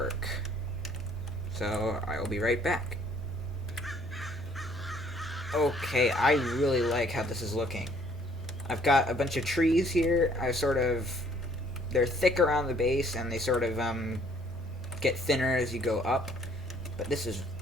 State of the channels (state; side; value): normal; both; correlation 0.60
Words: So, I will be right back. Okay, I really like how this is looking. I've got a bunch of trees here. They're thick around the base, and they sort of, get thinner as you go up. But this is